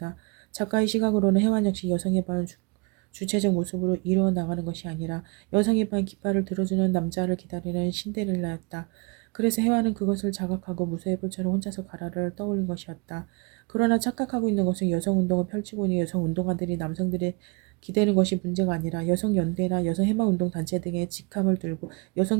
작가의 시각으로는 혜원 역시 여성의 반 주체적 모습으로 이루어 나가는 것이 아니라 여성의 반 깃발을 들어주는 남자를 기다리는 신데렐라였다. 그래서 혜화는 그것을 자각하고 무쇠의 불처럼 혼자서 가라를 떠올린 것이었다. 그러나 착각하고 있는 것은 여성운동을 펼치고 있는 여성운동가들이 남성들의 기대는 것이 문제가 아니라 여성연대나 여성해방운동 단체 등의 직함을 들고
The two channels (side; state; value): left; quieter; 29.2 dB